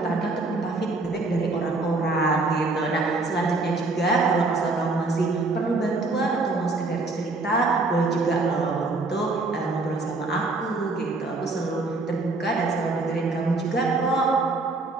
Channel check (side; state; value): left; quieter; 3.3 dB